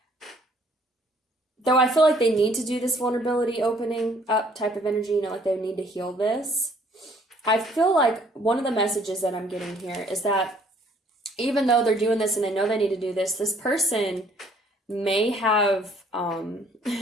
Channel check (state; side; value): normal; both; correlation 0.61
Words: though I feel like they need to do this vulnerability opening up type of energy, you know, like they need to heal this. I feel like one of the messages that I'm getting here is that even though they're doing this and they know they need to do this person may have